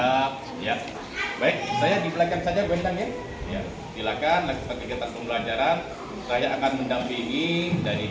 ya. Baik, saya di belakang saja Bendang ya. Ya, silakan lakukan kegiatan pembelajaran. Saya akan mendampingi dari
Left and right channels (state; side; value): identical; both; correlation 1.00